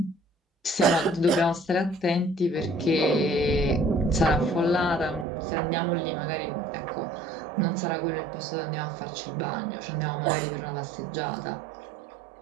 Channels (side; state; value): left; drops out; at 5.2 s